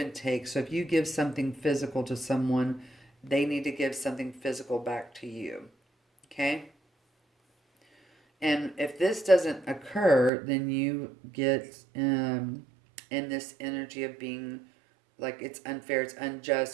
take. So if you give something physical to someone, they need to give something physical back to you. Okay? And if this doesn't occur, then you get in this energy of being like it's unfair, it's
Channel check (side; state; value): left; drops out; at 10.3 s